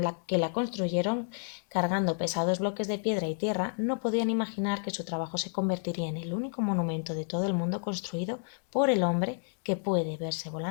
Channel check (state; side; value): silent; right; digital silence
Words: que la construyeron, cargando pesados bloques de piedra y tierra, no podían imaginar que su trabajo se convertiría en el único monumento de todo el mundo construido por el hombre que puede verse